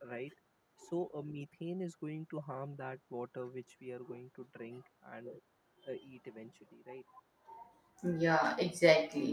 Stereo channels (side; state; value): both; identical; correlation 1.00